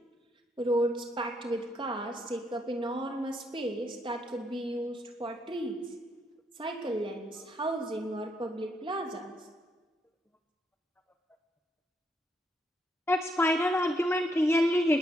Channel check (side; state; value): both; normal; correlation 0.75